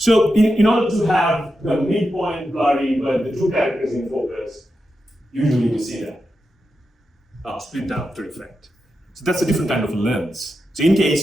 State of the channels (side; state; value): both; normal; correlation 0.89